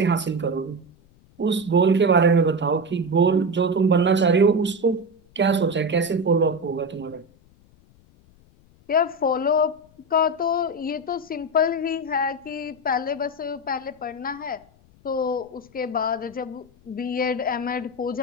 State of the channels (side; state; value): left; noise; rumble, 29 dB below the sound